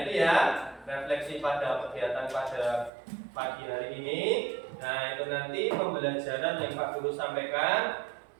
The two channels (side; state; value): left; drops out; at 2.9 s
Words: ini ya refleksi pada kegiatan pada pagi hari ini. Nah itu nanti pembelajaran yang Pak Guru sampaikan.